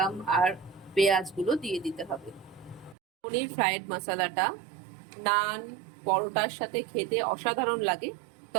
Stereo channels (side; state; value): left; drops out; at 3.0 s